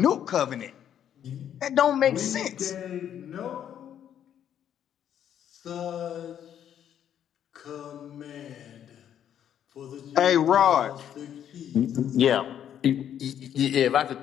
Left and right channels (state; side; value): quieter; right; 9.8 dB